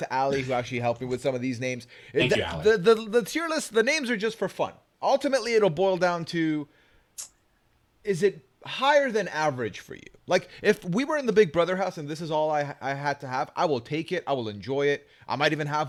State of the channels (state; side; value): identical; both; correlation 1.00